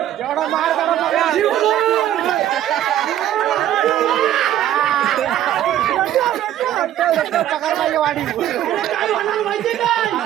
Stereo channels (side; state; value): left; quieter; 12.0 dB